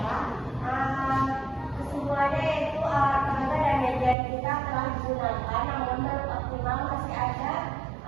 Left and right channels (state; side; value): drops out; left; at 4.2 s